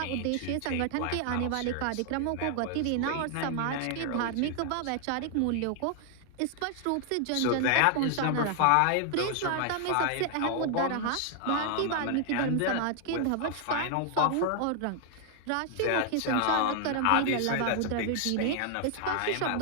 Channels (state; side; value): different; both; correlation 0.00